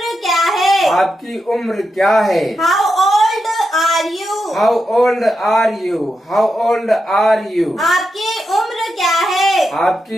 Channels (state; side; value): normal; both; correlation 0.86